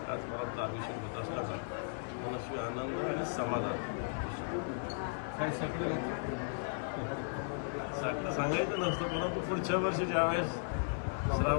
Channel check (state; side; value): silent; right; 54 dB below the other